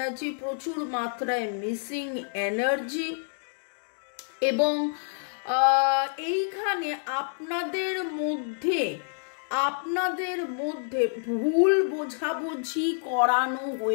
প্রচুর মাত্রায় মিসিং এনার্জি। এবং এইখানে আপনাদের মধ্যে ভুল বোঝাবুঝি করানো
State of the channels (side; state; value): right; silent; digital silence